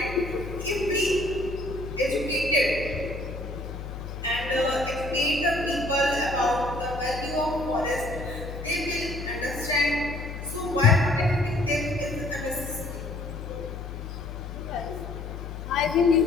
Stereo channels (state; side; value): noise; left; hum, 8 dB below the sound